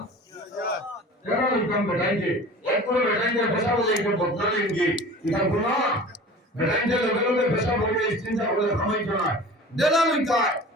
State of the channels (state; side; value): normal; both; correlation 0.40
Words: জেলা লইতাম বেটাইছে এক করে বেটাইছে পেশা বলে একটু বদলালেন কি এটা গুণা বেটাইছে লগে লগে পেশা বলে চিন্তা করে খামাইতো না জেলা লইতায়